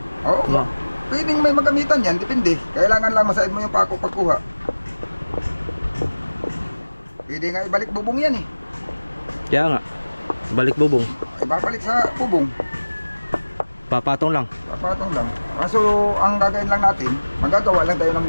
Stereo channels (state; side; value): inverted; both; correlation -1.00